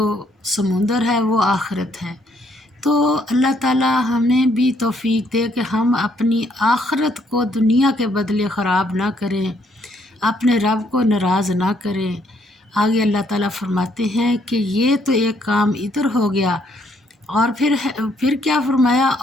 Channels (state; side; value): normal; both; correlation 0.69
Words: سمندر ہے وہ آخرت ہے۔ تو اللہ تعالیٰ ہمیں بھی توفیق دے کہ ہم اپنی آخرت کو دنیا کے بدلے خراب نہ کریں، اپنے رب کو ناراض نہ کریں۔ آگے اللہ تعالیٰ فرماتے ہیں کہ یہ تو ایک کام ادھر ہو گیا، اور پھر کیا فرمایا؟